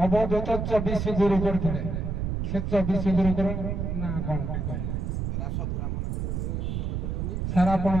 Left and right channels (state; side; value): noise; right; rumble, 2 dB below the sound